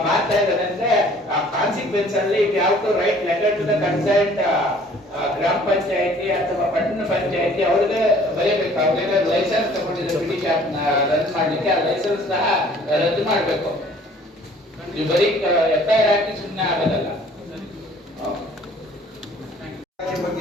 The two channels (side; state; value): both; normal; correlation 0.54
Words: ಇದ್ದಾರೆ ಅಂದ್ರೆ ಆ ಕಾನ್ಸಿಕ್ವೆನ್ಸ್ ಅಲ್ಲಿ ಯಾವ್ದು write letter to the concerned ಗ್ರಾಮ ಪಂಚಾಯತಿ ಅಥವಾ ಪಟ್ಟಣ ಪಂಚಾಯತಿ ಅವ್ರಿಗೆ ಬರೀಬೇಕು. ಅವ್ರಿಗೆಲ್ಲ ಲೈಸೆನ್ಸ್ ತಗೊಂಡಿದ್ದಾರೆ ಪಿಟಿ ಶಾಪ್ ರನ್ ಮಾಡ್ಲಿಕ್ಕೆ, ಆ ಲೈಸೆನ್ಸ್ ಸಹ ರದ್ದು ಮಾಡ್ಬೇಕು. ನೀವು ಬರೀ FIR ಹಾಕಿ ಸುಮ್ಮನೆ ಆಗೋದಲ್ಲ.